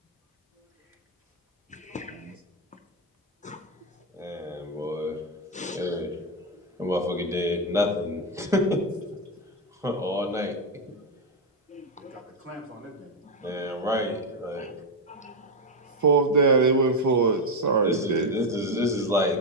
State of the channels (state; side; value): normal; both; correlation 0.05